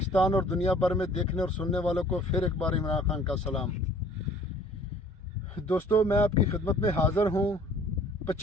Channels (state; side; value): normal; both; correlation 0.53